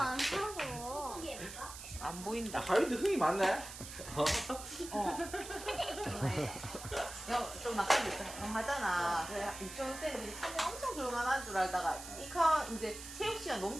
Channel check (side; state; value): right; noise; hiss, 11 dB below the sound